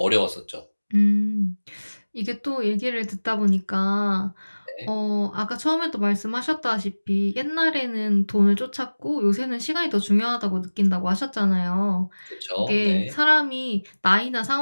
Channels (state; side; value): inverted; both; correlation -1.00